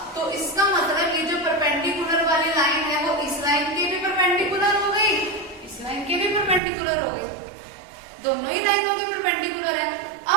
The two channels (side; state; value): left; drops out; at 6.6 s